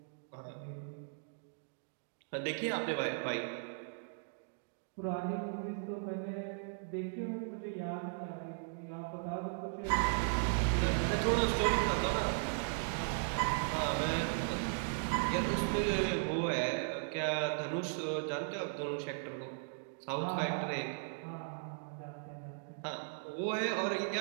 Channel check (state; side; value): silent; left; digital silence